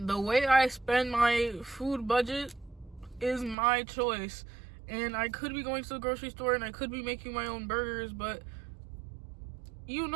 way I spend my food budget is my choice. And I could be going to the grocery store and I could be making my own burgers, but you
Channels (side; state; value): left; drops out; at 3.6 s